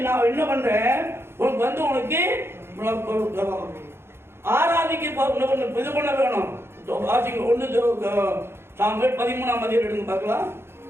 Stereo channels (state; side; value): late; left; 0.12 ms